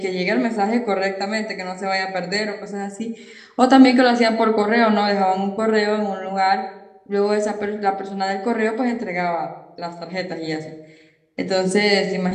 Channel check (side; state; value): both; identical; correlation 1.00